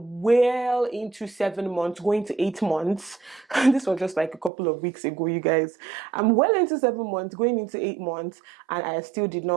well into 7 months, going to 8 months. This was just like a couple of weeks ago, you guys. I'm well into 7 months, going into 8 months, and I still did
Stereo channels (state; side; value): drops out; left; at 4.5 s